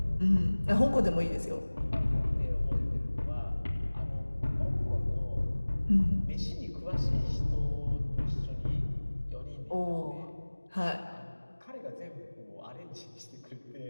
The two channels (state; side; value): inverted; both; correlation -1.00